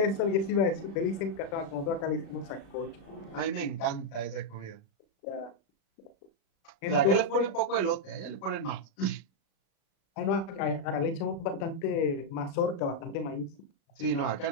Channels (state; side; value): late; right; 36 ms